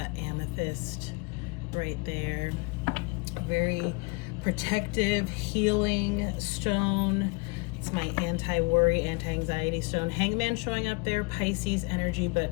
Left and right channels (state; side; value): quieter; right; 28.8 dB